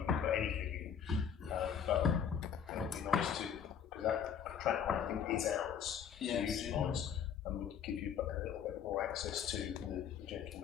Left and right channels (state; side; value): quieter; right; 7.9 dB